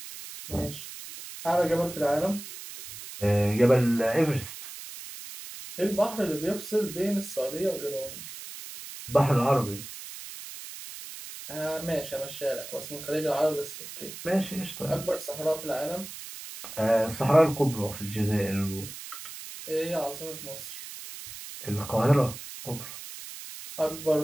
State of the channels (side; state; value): right; noise; hiss, 12 dB below the sound